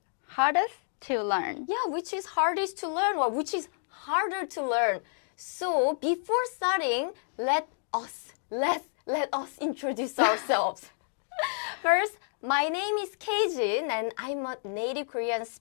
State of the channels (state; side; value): silent; right; digital silence